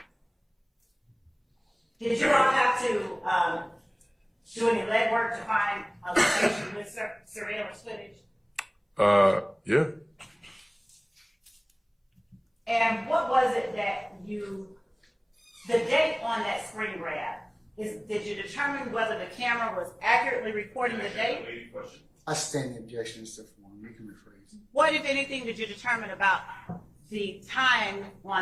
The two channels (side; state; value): both; identical; correlation 1.00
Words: Did you all have to do any legwork to find a location with surveillance footage? Yeah. And what was it that the date on that screen grab, did you determine whether the camera was accurately recording the date? I stand the objection, Mr. Form. You can rephrase. What, if anything, did you determine about the time